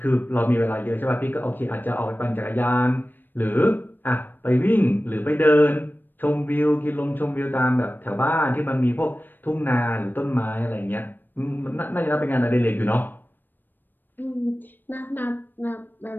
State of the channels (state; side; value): late; right; 0.092 ms